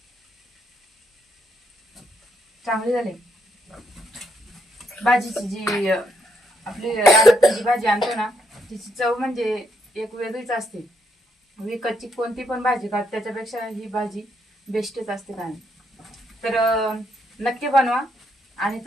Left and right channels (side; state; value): both; normal; correlation 0.76